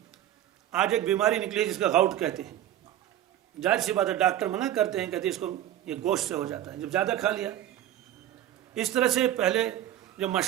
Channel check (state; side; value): quieter; left; 12.1 dB